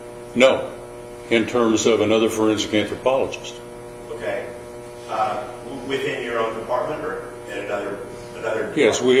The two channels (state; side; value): identical; both; correlation 1.00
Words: No, in terms of another forensic anthropologist. Okay. Within your own department or in another department? Yes, we